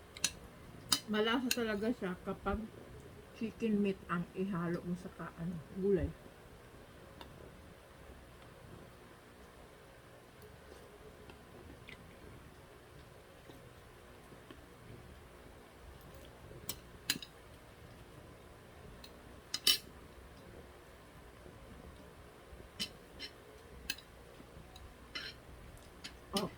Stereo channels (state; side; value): identical; both; correlation 1.00